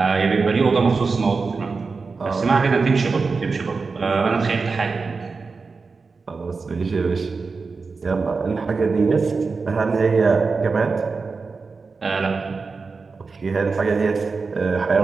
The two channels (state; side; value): quieter; left; 4.5 dB